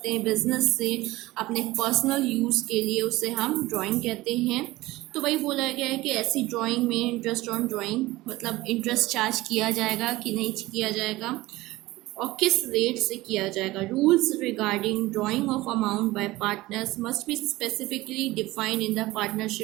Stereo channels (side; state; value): left; quieter; 18.8 dB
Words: हैं बिजनेस से अपने पर्सनल यूज़ के लिए, उसे हम ड्राइंग कहते हैं। तो वही बोला गया है कि ऐसी ड्राइंग में इंटरेस्ट ऑन ड्राइंग मतलब इंटरेस्ट चार्ज किया जाएगा कि नहीं किया जाएगा और किस रेट से किया जाएगा। Rules regarding drawing of amount by partners must be specifically defined in the